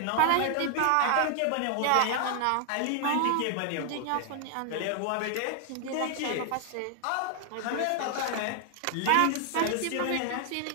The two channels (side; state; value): both; different; correlation 0.00